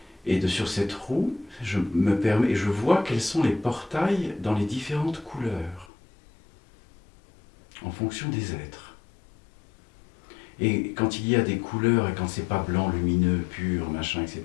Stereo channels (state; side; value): drops out; right; at 5.9 s